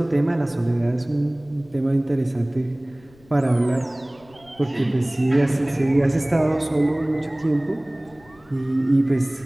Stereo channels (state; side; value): noise; left; rumble, 28 dB below the sound